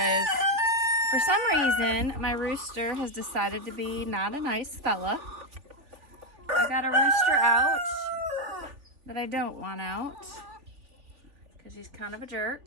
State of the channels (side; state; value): left; late; 3.4 ms